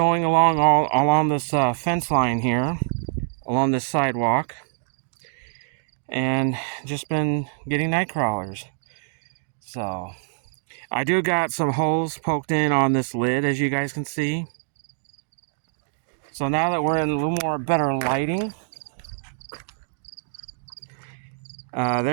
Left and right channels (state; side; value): silent; left; digital silence